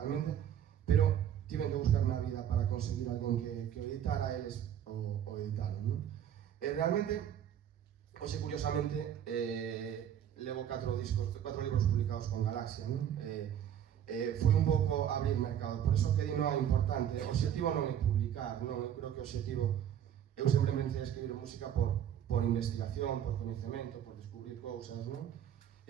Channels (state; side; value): quieter; left; 9.9 dB